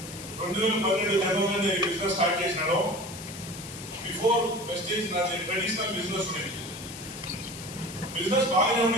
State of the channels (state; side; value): noise; left; hiss, 12 dB below the sound